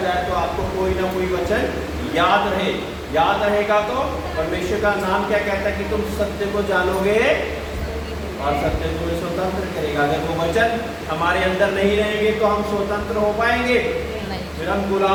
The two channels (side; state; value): both; identical; correlation 1.00